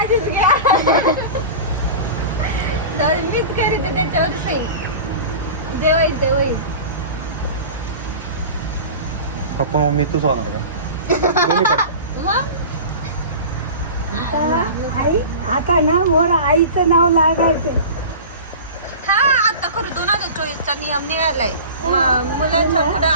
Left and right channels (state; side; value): inverted; both; correlation -0.35